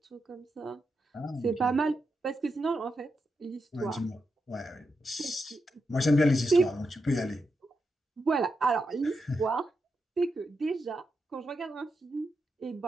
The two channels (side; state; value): both; normal; correlation 0.85